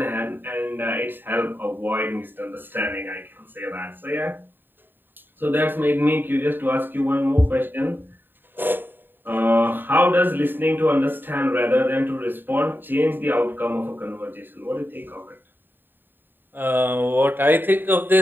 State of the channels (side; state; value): left; late; 0.094 ms